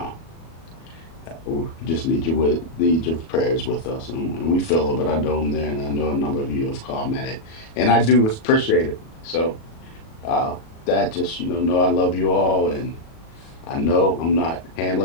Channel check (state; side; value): late; right; 37 ms